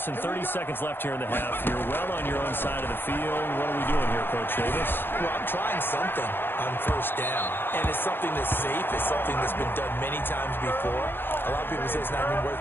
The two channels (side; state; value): right; late; 0.099 ms